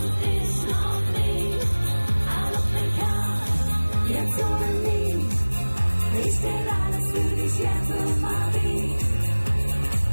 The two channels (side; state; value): both; inverted; correlation -1.00